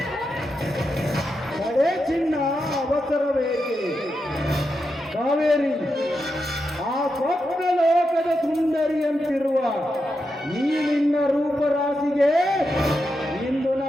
ಕಡೆ ಚಿನ್ನ ಅವಸರವೇಕೆ ಕಾವೇರಿ? ಆ ಸ್ವಪ್ನ ಲೋಕದ ಸುಂದರಿಯಂತಿರುವ ಈ ನಿನ್ನ ರೂಪರಾಶಿಗೆ ಇಂದು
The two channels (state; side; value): normal; both; correlation 0.86